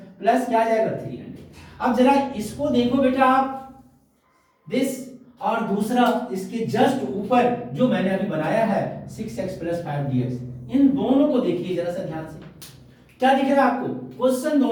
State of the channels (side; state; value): both; identical; correlation 1.00